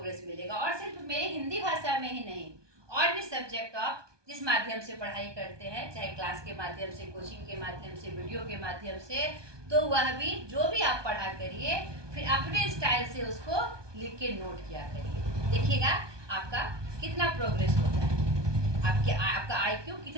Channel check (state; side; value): late; left; 1.2 ms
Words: मिलेगा। और सिर्फ मेरे हिंदी भाषा में ही नहीं, और भी सब्जेक्ट आप जिस माध्यम से पढ़ाई करते हैं, चाहे क्लास के माध्यम से, कोचिंग के माध्यम से, वीडियो के माध्यम से, तो वह भी जो भी आप पढ़ा करिए फिर अपने स्टाइल से उसको लिख के नोट किया करिए। देखिएगा आपका कितना प्रोग्रेस होता है, आपका IQ